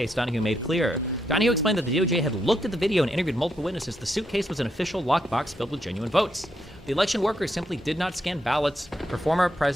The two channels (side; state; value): both; normal; correlation 0.80